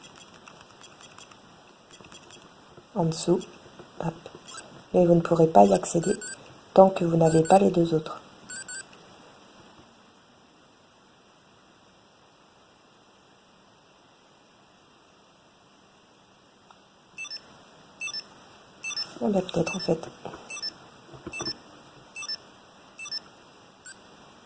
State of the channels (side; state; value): both; identical; correlation 1.00